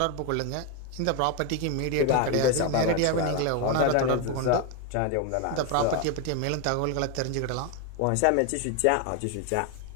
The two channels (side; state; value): both; different; correlation 0.01